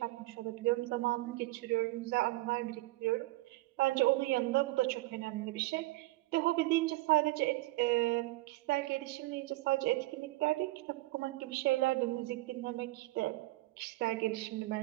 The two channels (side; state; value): left; quieter; 19.9 dB